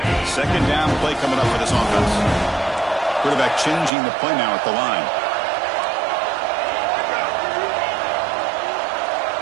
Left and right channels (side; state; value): left; drops out; at 3.9 s